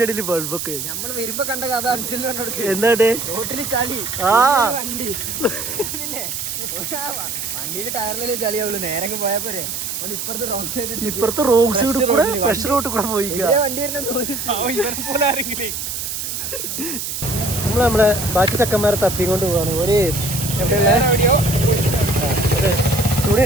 ഇടയിൽ ബൾബൊക്കെ നമ്മള് വരുമ്പോ കണ്ട കഥ അനുസരിച്ച് എന്താ റോട്ടില് ചളി വണ്ടി വണ്ടിയില് ടയറില് ചളിയാവുള്ളൂ. നേരെ പോയാ പോരെ. ഇപ്പുറത്തെ റോഡ് സൈഡ് കൂടെ ഫ്രഷ് റോഡ് കൂടെ പോയി വണ്ടി നമ്മളെ ബാക്കി ചക്കന്മാരെ തപ്പിക്കൊണ്ട് പോവാണ്. ഒരു എവിടെയുള്ള തുണി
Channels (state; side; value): noise; right; hiss, 4 dB below the sound